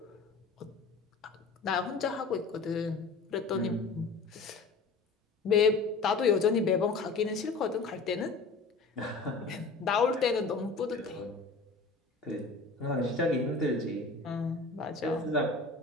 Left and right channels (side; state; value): right; quieter; 4.0 dB